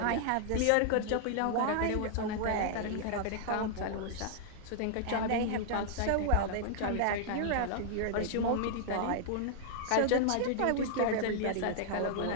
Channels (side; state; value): both; different; correlation -0.01